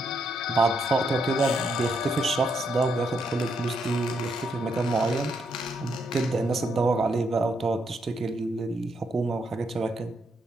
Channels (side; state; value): both; normal; correlation 0.77